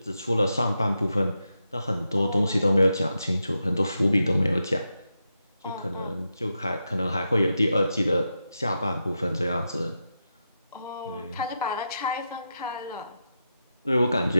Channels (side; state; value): both; inverted; correlation -0.87